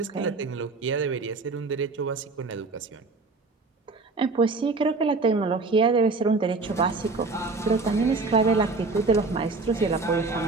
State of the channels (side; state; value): left; quieter; 3.8 dB